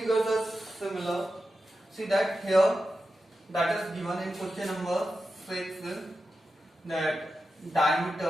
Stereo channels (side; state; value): both; normal; correlation 0.90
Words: are similar. See that here, that is given in question number 6 is that